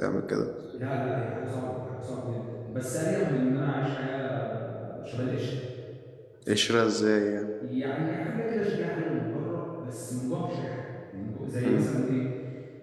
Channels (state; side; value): identical; both; correlation 1.00